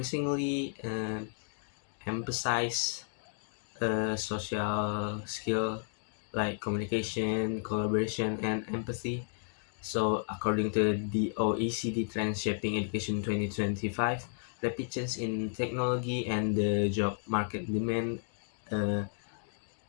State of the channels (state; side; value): silent; right; digital silence